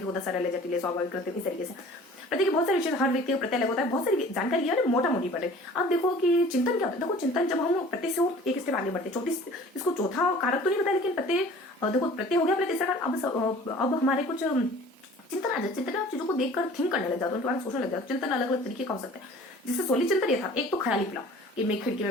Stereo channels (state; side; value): normal; both; correlation 0.47